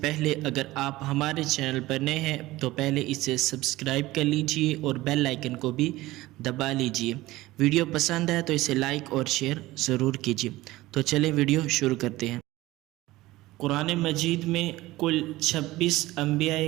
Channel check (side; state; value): left; quieter; 18.1 dB